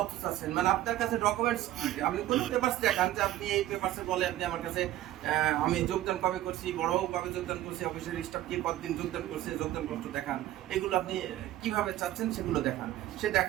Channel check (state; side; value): quieter; left; 14.2 dB